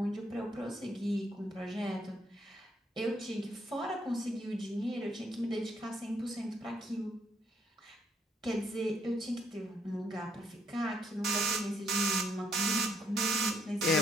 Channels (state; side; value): normal; both; correlation 0.70